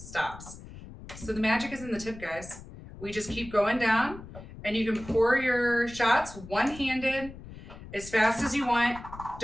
So the magic is in the tip, guys. We just keep going down. And you can pour your shots one-handed as fast as you want.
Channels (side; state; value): left; noise; rumble, 15 dB below the sound